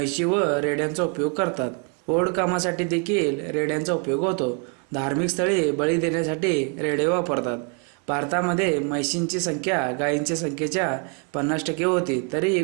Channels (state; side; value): quieter; left; 35.9 dB